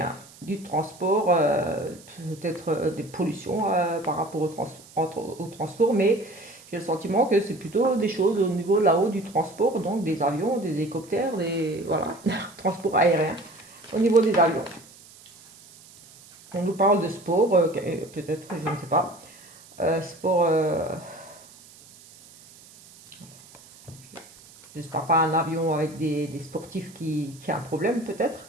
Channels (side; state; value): right; noise; hiss, 22 dB below the sound